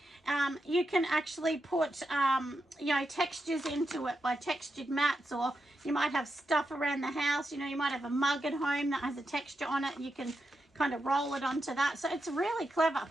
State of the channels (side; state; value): both; normal; correlation 0.87